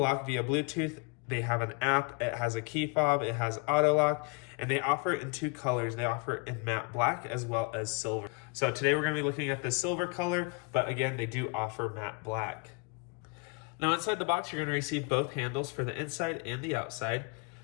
via Bluetooth. They have an app, it has a key fob, it has auto lock, and they offer it in two colors. They offer it in matte black as well as silver. So today we're going to be looking at the silver color, but again, they do offer matte black. Now inside the box, you're going to receive both handles for the inside and the outside.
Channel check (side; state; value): right; quieter; 31.5 dB